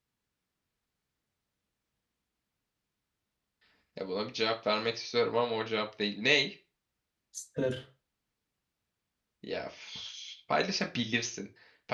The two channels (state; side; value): identical; both; correlation 1.00